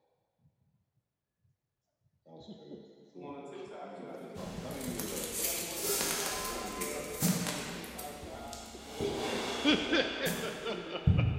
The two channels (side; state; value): both; identical; correlation 1.00